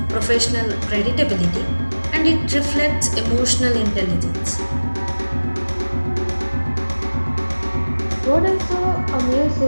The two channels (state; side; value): inverted; both; correlation -1.00